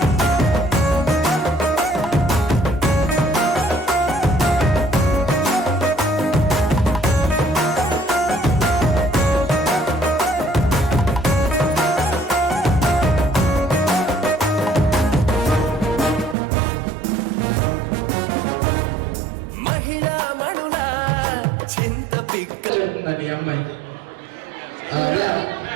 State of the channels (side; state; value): left; drops out; at 16.4 s